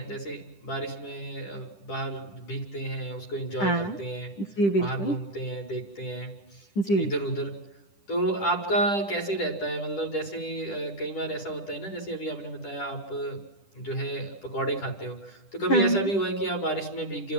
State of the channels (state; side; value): late; right; 10 ms